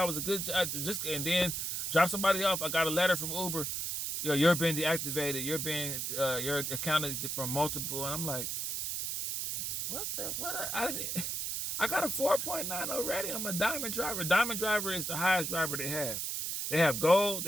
it was a good job. And then drop somebody off. I got a letter from Uber. You're being deactivated. You're accounted for multiple. And I'm like, what? I got a 4.9 already. I'm a diamond driver. Diamond driver is the highest driver they have. They have gold,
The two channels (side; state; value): right; noise; hiss, 2 dB below the sound